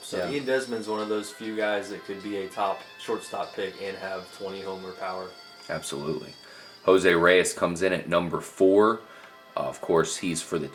So Desmond's one of those few guys that could be a top shortstop pick and have 20 homer power. Absolutely. Jose Reyes comes in at number 4. Of course, he's for the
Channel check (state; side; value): identical; both; correlation 1.00